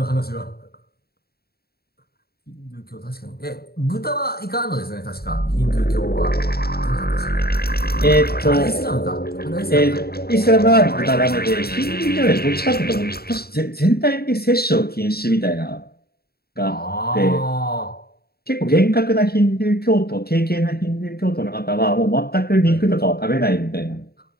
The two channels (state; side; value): late; right; 0.45 ms